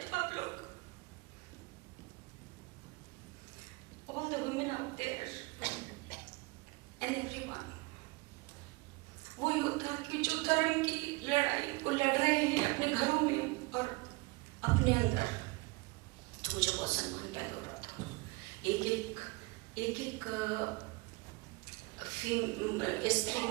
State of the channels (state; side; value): quieter; left; 25.2 dB